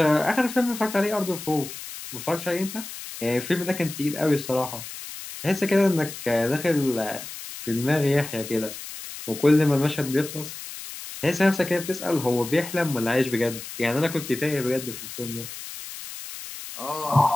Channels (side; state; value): left; noise; hiss, 11 dB below the sound